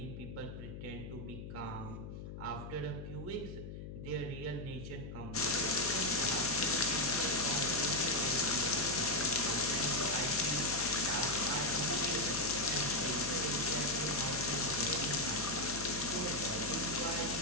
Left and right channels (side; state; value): left; noise; hum, 10 dB below the sound